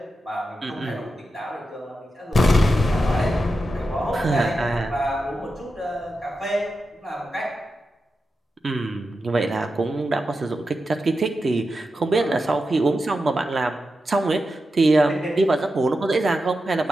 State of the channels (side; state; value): both; normal; correlation 0.90